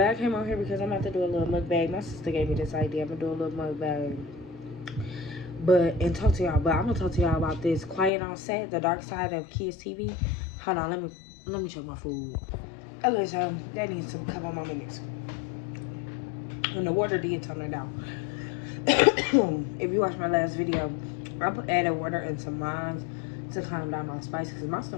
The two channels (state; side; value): drops out; right; at 8.1 s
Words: I came on here because I'm about to do a little mukbang. My sister gave me this idea. I'm gonna do a little mukbang. And talk to y'all. But I'm gonna talk to y'all about this Quiet on Set, the dark side of kids TV. Hold on, let me check my food. Okay, so that needs a couple more minutes. And the water did turn it out. If you watched my last video, I added water into mine to calm down my spices because my